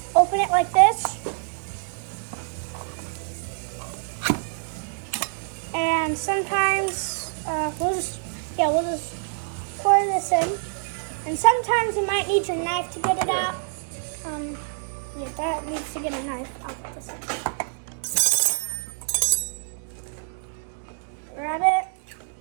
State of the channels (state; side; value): silent; left; digital silence